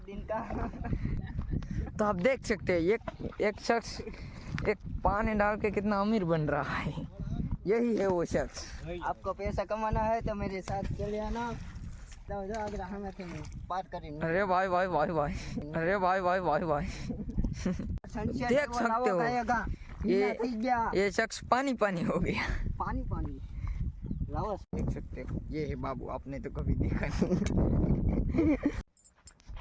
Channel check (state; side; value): identical; both; correlation 1.00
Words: दिन का। तो आप देख सकते हैं एक शख्स एक पानी डाल के कितना अमीर बन रहा है। यही है वो शख्स। आपको पैसा कमाना है तो मेरे साथ चले आना। तो अगर हमें बात करें। अरे भाई भाई भाई भाई, अरे भाई भाई भाई भाई, देख सकते हो ये शख्स पानी पानी हो गया। पानी पानी रावस देख सकते हो, ये है बाबू, आपने तो कभी देखा नहीं।